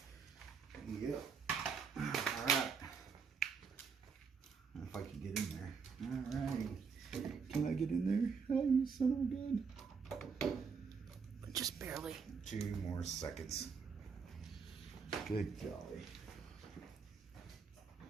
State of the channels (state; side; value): quieter; left; 5.7 dB